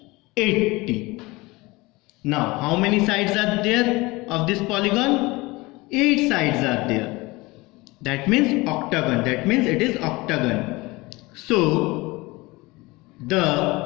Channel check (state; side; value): quieter; right; 22.5 dB